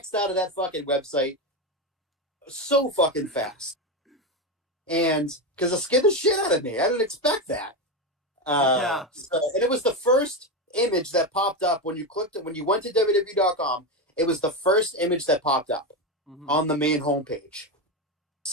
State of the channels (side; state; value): both; normal; correlation 0.14